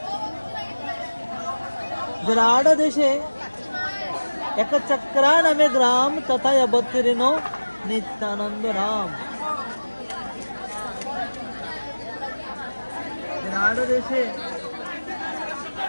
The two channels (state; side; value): inverted; both; correlation -1.00